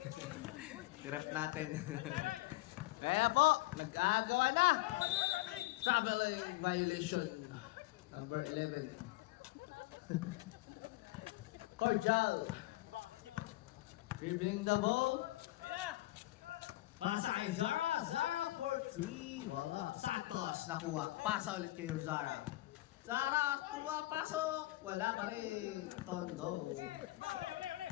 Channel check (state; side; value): quieter; right; 18.8 dB